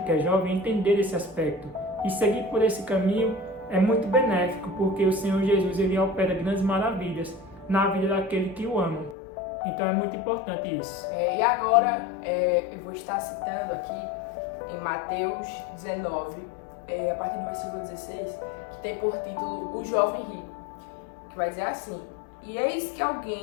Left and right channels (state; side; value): drops out; right; at 9.2 s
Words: que é jovem entender esse aspecto e seguir por esse caminho é muito benéfico, porque o Senhor Jesus ele opera grandes maravilhas na vida daquele que o ama. Então é muito importante isso. E agora eu vou estar citando aqui em Mateus 19, a partir do versículo 16, que tem por título O Jovem Rico, que vai dizer assim: E eis que